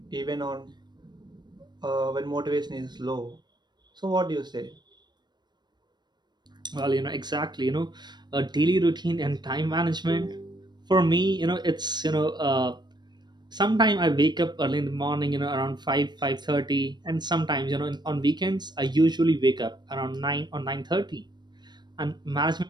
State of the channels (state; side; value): late; left; 0.21 ms